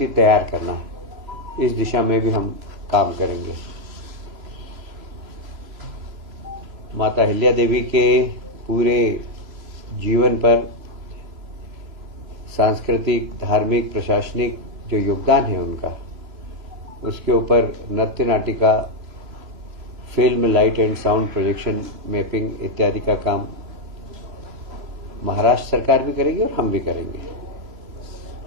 तैयार करना, इस दिशा में भी हम काम करेंगे। माता अहिल्या देवी के पूरे जीवन पर सांस्कृतिक, धार्मिक, प्रशासनिक जो योगदान है उनका, उसके ऊपर नृत्य नाटिका, film, light and sound projection, mapping इत्यादि का काम महाराष्ट्र सरकार भी करेगी और हम भी करेंगे।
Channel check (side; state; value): left; late; 3.0 ms